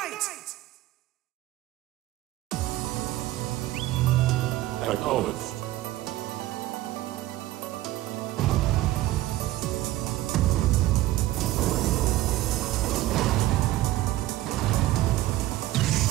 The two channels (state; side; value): quieter; left; 16.0 dB